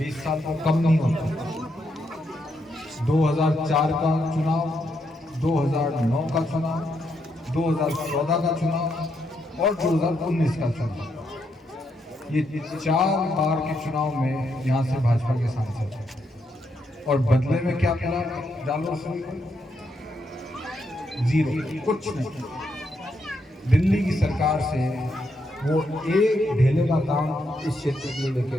साल को कम नहीं होता। 2004 का चुनाव, 2009 का चुनाव, 2014 का चुनाव और 2019 का चुनाव, ये 4 बार के चुनाव में यहाँ से भाजपा के सांसद हैं। और बदले में क्या मिला जालौर सुरई को? जीरो, कुछ नहीं। दिल्ली की सरकार से वो एक ढेले का काम इस क्षेत्र के लिए लेके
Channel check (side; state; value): both; normal; correlation 0.79